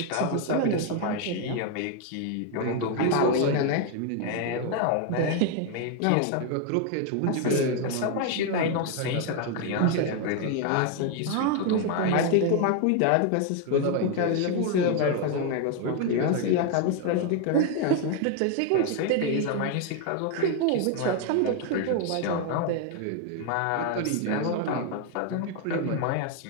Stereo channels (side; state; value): both; different; correlation 0.01